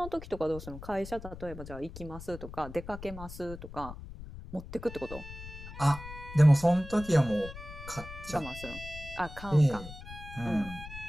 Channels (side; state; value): left; noise; rumble, 12 dB below the sound